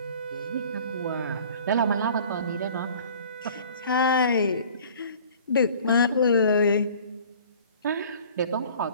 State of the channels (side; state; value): both; inverted; correlation -0.48